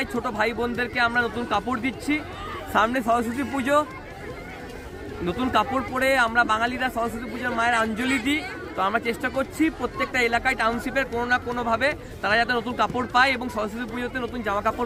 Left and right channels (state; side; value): identical; both; correlation 1.00